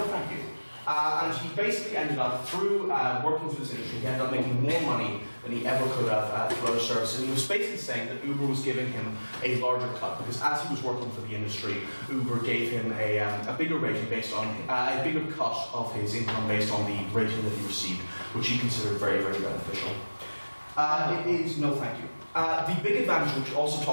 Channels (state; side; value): inverted; both; correlation -1.00